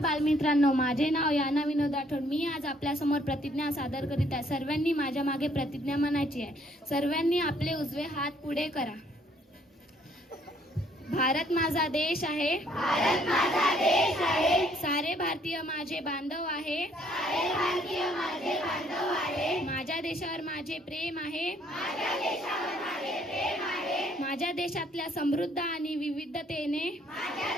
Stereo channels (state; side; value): normal; both; correlation 0.65